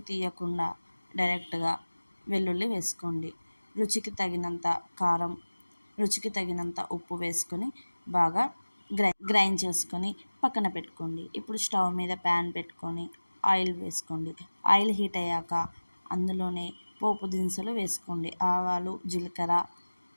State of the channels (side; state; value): both; inverted; correlation -1.00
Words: తీయకుండా డైరెక్ట్గా వెల్లుల్లి వేసుకోండి. రుచికి తగినంత కారం, రుచికి తగినంత ఉప్పు వేసుకొని బాగా గ్రైండ్ చేసుకొని పక్కన పెట్టుకోండి. ఇప్పుడు స్టవ్ మీద ప్యాన్ పెట్టుకొని ఆయిల్ వేసుకోండి. ఆయిల్ హీట్ అయ్యాక అందులోనే పోపు దినుసులు వేసుకోండి. ఆవాలు, జీలకర్ర,